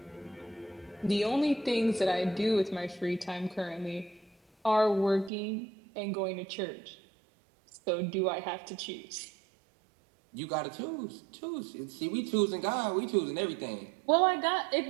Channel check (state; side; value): drops out; left; at 5.3 s